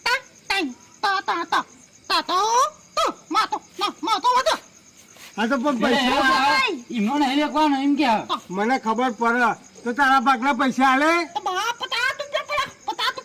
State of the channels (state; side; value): identical; both; correlation 1.00